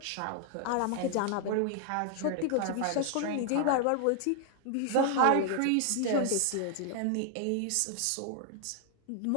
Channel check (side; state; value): both; different; correlation 0.00